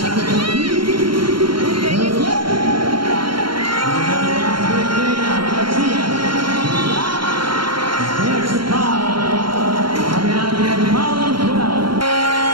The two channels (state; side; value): late; left; 0.73 ms